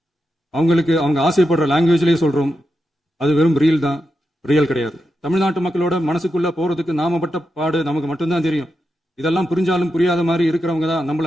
அவங்களுக்கு அவங்க ஆசைப்படுற லாங்குவேஜ்லேயே சொல்றோம், அது வெறும் ரீல் தான், ரியல் கிடையாது. தமிழ்நாட்டு மக்களோட மனசுக்குள்ள போறதுக்கு நாம பட்ட பாடு நமக்கு மட்டும்தான் தெரியும். இதெல்லாம் புரிஞ்சாலும் புரியாத மாதிரி இருக்கிறவங்க தான்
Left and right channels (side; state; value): both; normal; correlation 0.87